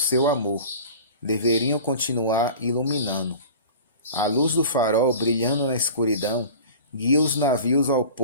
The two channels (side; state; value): both; inverted; correlation -0.39